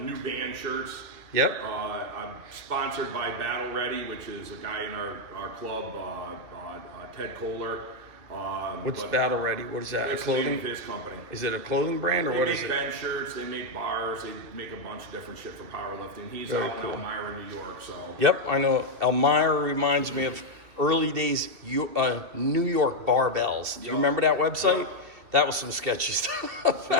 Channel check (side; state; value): left; late; 2.6 ms